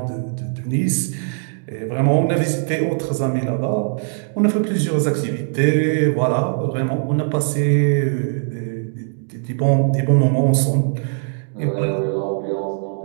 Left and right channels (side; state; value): left; silent; digital silence